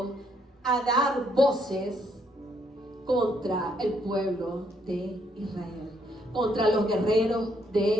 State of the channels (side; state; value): both; normal; correlation 0.71